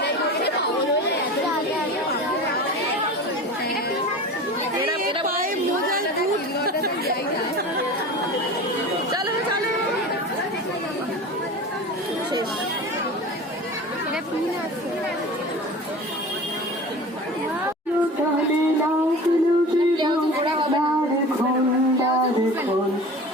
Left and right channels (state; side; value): normal; both; correlation 0.35